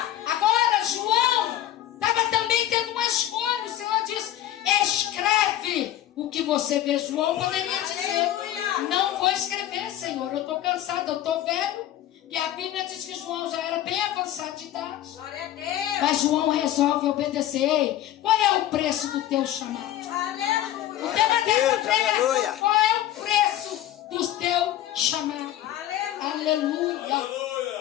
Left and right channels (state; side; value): quieter; right; 12.7 dB